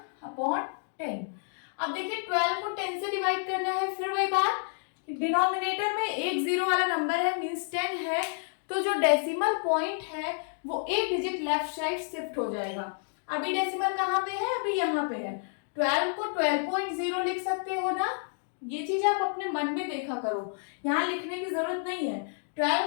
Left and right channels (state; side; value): silent; right; 58 dB below the other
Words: अब देखिए 12 को 10 से डिवाइड करना है, फिर वही बात, डिनोमिनेटर में एक जीरो वाला नंबर है मीन्स 10 है, तो जो डेसिमल पॉइंट है वो एक डिजिट लेफ्ट साइड शिफ्ट हो जाएगा। अभी डेसिमल कहाँ पे है? अभी यहाँ पे है। 12 को 12.0 लिख सकते हो ना। ये चीज आप अपने मन में देखा करो, यहाँ लिखने की जरूरत नहीं है। 12